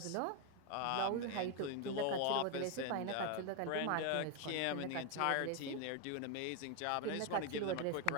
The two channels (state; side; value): different; both; correlation 0.01